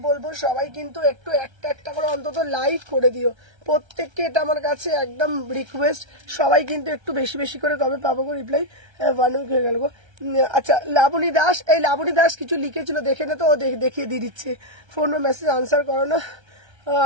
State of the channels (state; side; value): late; left; 1.3 ms